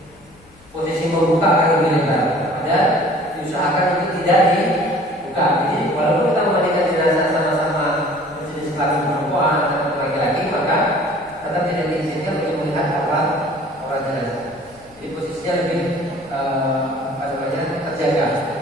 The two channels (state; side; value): noise; left; hum, 27 dB below the sound